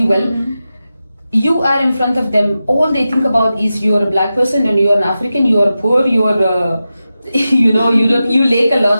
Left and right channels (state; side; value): inverted; both; correlation -0.92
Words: well. You are in front of them, all they think about is you're a black person and you're an African, you're poor, you're you know, you lack a